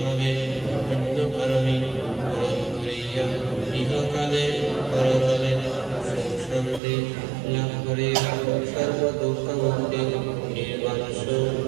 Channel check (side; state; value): left; drops out; at 6.8 s